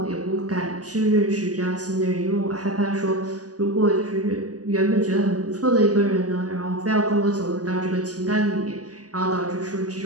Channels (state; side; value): late; left; 0.67 ms